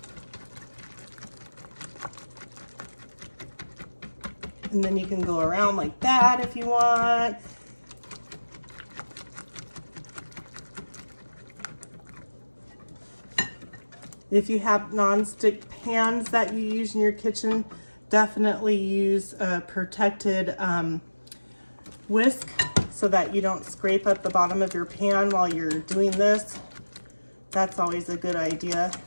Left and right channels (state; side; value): inverted; both; correlation -1.00